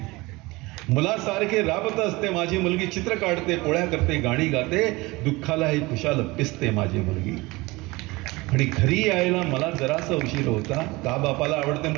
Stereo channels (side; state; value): left; quieter; 22.4 dB